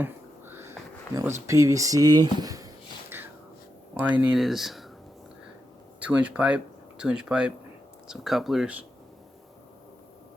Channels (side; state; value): both; normal; correlation 0.86